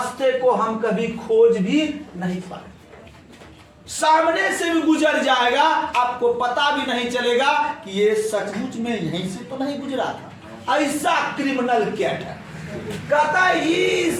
को हम कभी खोज भी नहीं पाए, सामने से भी गुजर जाएगा, आपको पता भी नहीं चलेगा कि ये सचमुच में यहीं से तो नहीं गुजरा था। ऐसा क्रिमिनल कैट है। कहता है he is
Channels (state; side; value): identical; both; correlation 1.00